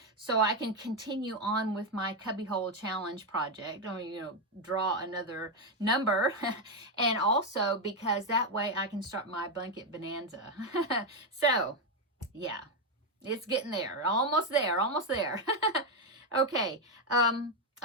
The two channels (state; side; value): normal; both; correlation 0.05